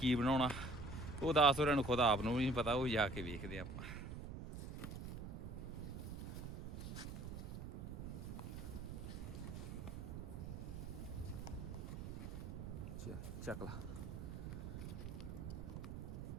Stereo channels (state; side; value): noise; right; rumble, 7 dB below the sound